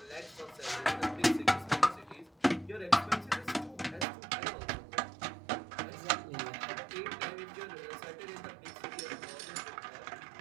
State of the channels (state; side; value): drops out; left; at 4.0 s